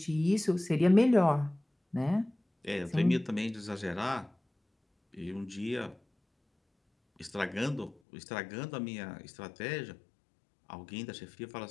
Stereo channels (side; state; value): right; drops out; at 8.0 s